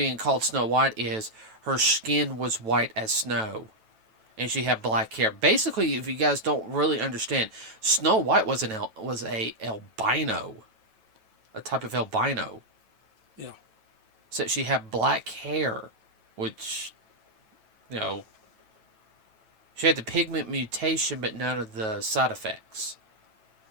called Snow White is her skin was white as snow, and she had black hair. Basically, if you guys don't really understand, Snow White was a albino, a type of albino. Yeah. So she had black hair, which, you know, she had the pigment mutation, but none of the side effects.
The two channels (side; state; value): left; late; 9.1 ms